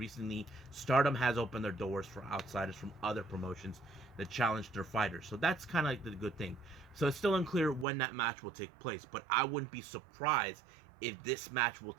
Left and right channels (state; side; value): drops out; left; at 7.9 s